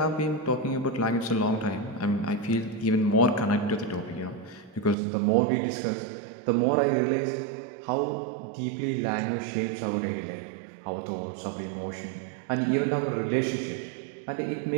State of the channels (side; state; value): left; drops out; at 5.0 s